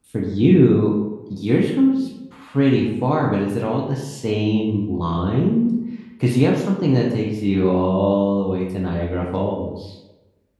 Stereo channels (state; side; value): identical; both; correlation 1.00